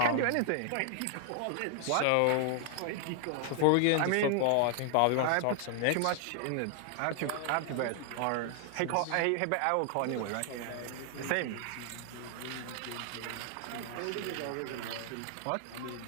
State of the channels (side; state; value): both; different; correlation 0.00